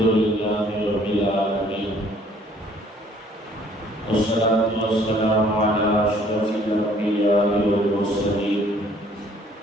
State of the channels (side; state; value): both; normal; correlation 0.59